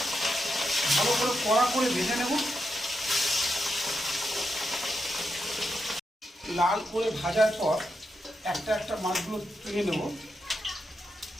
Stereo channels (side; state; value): both; normal; correlation 0.85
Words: ভালো করে কড়া করে ভেজে নেব। লাল করে ভাজার পর একটা একটা মাছগুলো তুলে নেব।